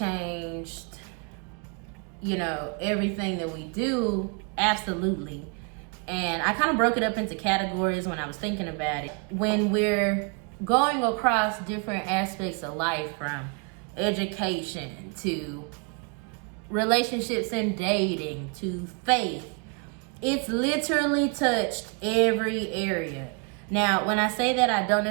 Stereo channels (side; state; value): left; quieter; 35.1 dB